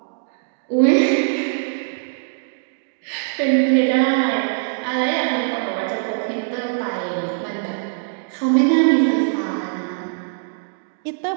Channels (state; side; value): silent; left; digital silence